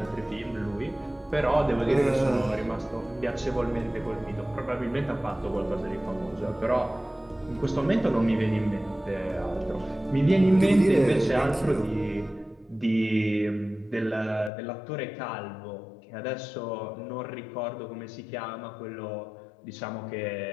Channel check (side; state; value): right; drops out; at 14.5 s